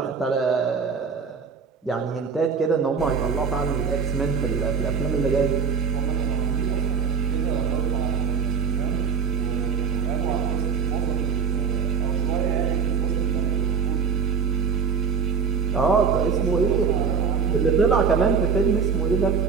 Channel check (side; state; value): left; quieter; 5.9 dB